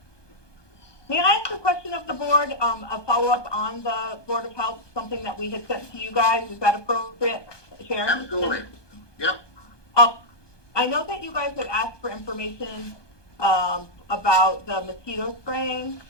May I ask a question of the board? A follow-up on the Board of Health, something that we had sent to you guys. Is that appropriate, Sharon? Absolutely. Yep. I know that you guys had asked for information about the mosquito spraying,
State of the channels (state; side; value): late; right; 1.2 ms